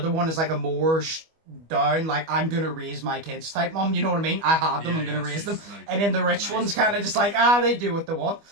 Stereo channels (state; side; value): late; left; 25 ms